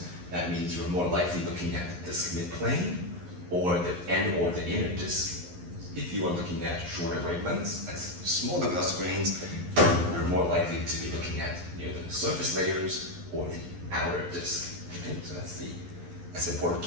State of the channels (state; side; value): late; left; 11 ms